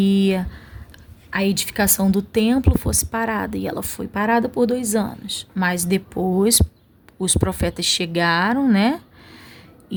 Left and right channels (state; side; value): identical; both; correlation 1.00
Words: a edificação do templo fosse parada, e ela foi parada por 2 anos. Mas depois os profetas chegaram, né,